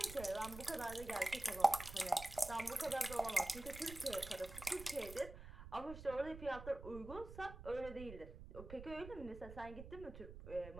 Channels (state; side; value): noise; right; rumble, 12 dB below the sound